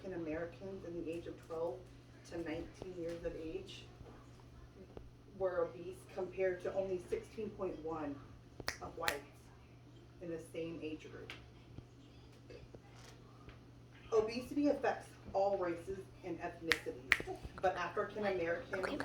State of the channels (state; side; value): identical; both; correlation 1.00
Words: Americans in the age of 12 to 19 years of age were obese, compared to only 16.1 of whites in the same age group. Obesity affects all races and ethnicities, but African Americans